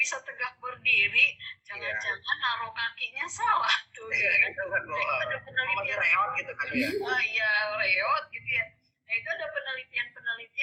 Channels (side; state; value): both; identical; correlation 1.00